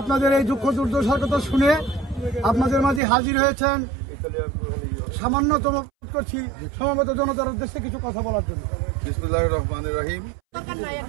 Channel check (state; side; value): drops out; left; at 3.0 s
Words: আপনাদের এই দুঃখ দুর্দশার কথা শুনে আপনাদের মাঝে হাজির হয়েছেন সামান্যতম করছি সমবেত জনতার উদ্দেশ্যে কিছু কথা বলার জন্য। বিসমিল্লাহির রহমানির রহিম।